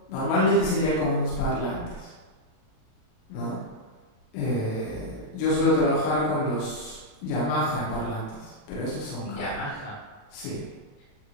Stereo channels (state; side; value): late; right; 37 ms